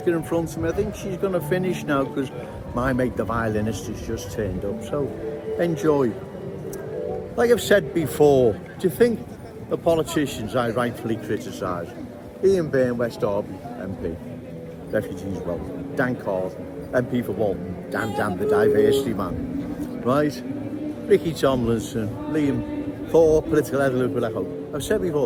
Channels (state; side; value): identical; both; correlation 1.00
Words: in front of me. I think she's going to finish now because my mate, the violinist, has just turned up. So enjoy. Like I've said before, do you think the politicians I rightfully criticise, Ian Byrne, West Derby MP, Refugees Welcome, Dan Carson, MP for Walton, Dan the diversity man, right? Ricky Tomlinson, Liam Thorpe, political head of Liverpool, I hope. I've said